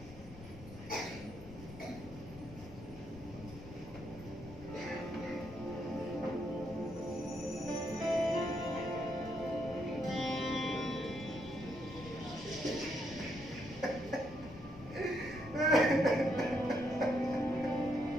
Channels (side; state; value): left; noise; rumble, 15 dB below the sound